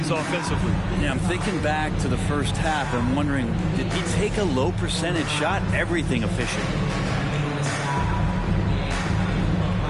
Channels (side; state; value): both; identical; correlation 1.00